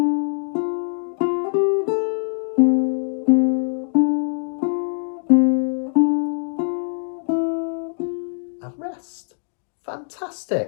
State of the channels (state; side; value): silent; right; digital silence